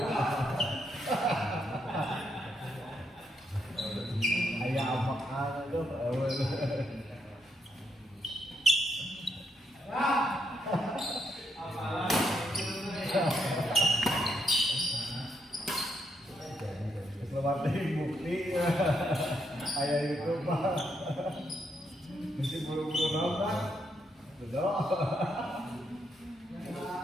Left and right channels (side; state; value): both; normal; correlation 0.78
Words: Ayah apakah itu? Selamat bukti ayah itu pak mesti buru-buru nonton betul